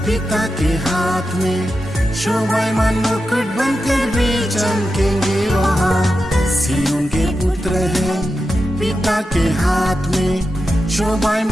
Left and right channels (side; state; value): both; normal; correlation 0.90